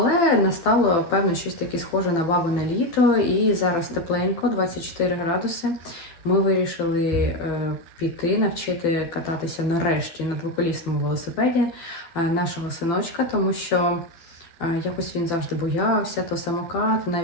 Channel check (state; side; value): late; right; 12 ms